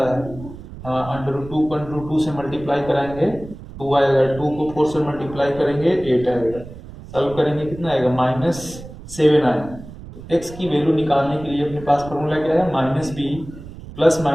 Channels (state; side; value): noise; right; rumble, 15 dB below the sound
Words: है, √2 को √2 से मल्टीप्लाई कराएंगे 2 आएगा, 2 को 4 से मल्टीप्लाई करेंगे 8 आएगा, सॉल्व करेंगे कितना आएगा -7 आएगा। तो x की वैल्यू निकालने के लिए अपने पास फॉर्मूला क्या है -b plus